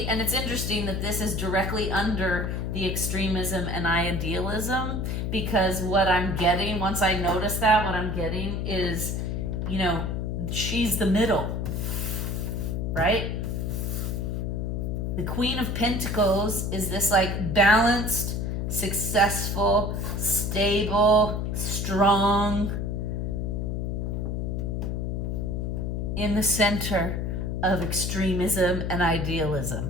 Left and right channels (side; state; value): left; noise; hum, 1 dB below the sound